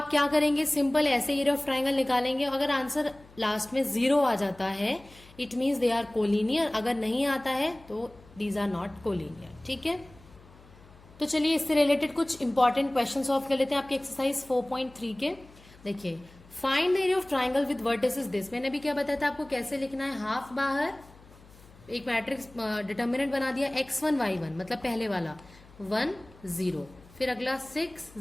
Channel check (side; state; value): left; noise; hum, 24 dB below the sound